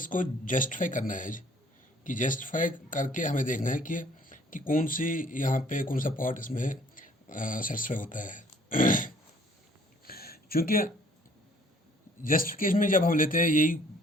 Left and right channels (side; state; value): both; normal; correlation 0.58